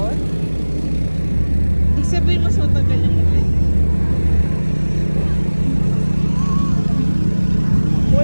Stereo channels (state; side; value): inverted; both; correlation -1.00